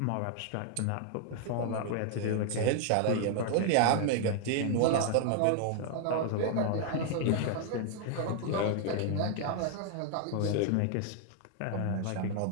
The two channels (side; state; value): both; different; correlation 0.00